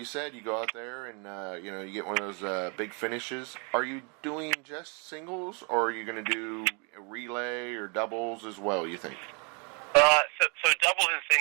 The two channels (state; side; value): quieter; left; 34.9 dB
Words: said, you go out there and you get one of those big finishes. Are you doing just singles, or are you going to do a relay or doubles as well, you think? So doubles and